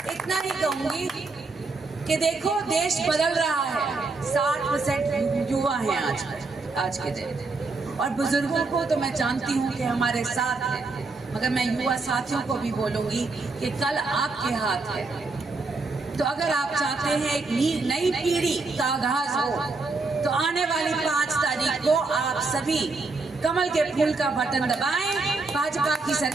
इतना ही कहूँगी कि देखो देश बदल रहा है, 60% युवा हैं आज के दिन, और बुजुर्गों को तो मैं जानती हूँ कि हमारे साथ हैं, मगर मैं युवा साथियों को भी बोलूँगी कि कल आपके हाथ है। तो अगर आप चाहते हैं एक नई पीढ़ी का आगाज हो, तो आने वाली 5 तारीख को आप सभी कमल के फूल का बटन दबाएं, भाजपा की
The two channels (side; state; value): left; quieter; 3.7 dB